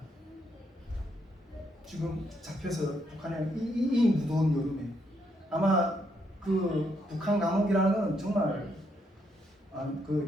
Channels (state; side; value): normal; both; correlation 0.76